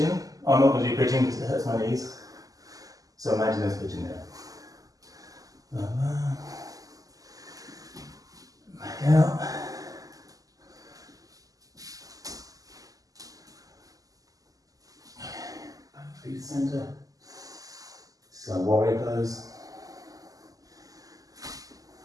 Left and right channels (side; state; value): left; late; 0.17 ms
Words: I'm not going to do pigeon because it hurts my knees. So imagine there's pigeon there. Back out. Back to the centre. So warrior pose.